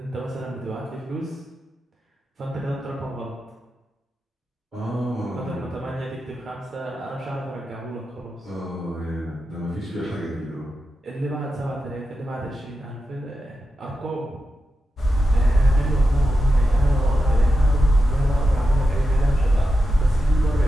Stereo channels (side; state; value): both; normal; correlation 0.89